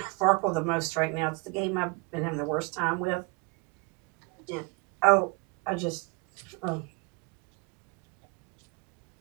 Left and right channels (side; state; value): left; quieter; 29.6 dB